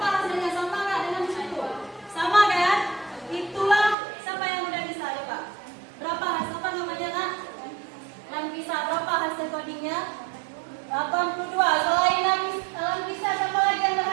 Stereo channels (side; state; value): left; drops out; at 4.0 s